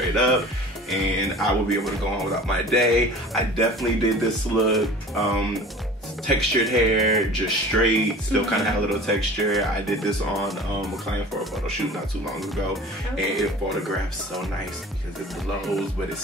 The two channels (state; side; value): normal; both; correlation 0.42